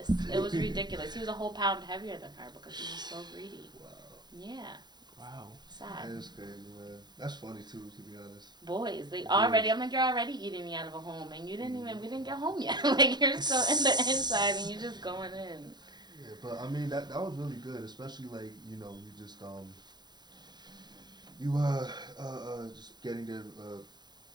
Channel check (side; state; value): left; late; 0.21 ms